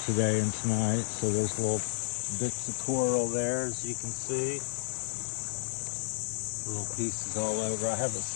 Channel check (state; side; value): silent; right; digital silence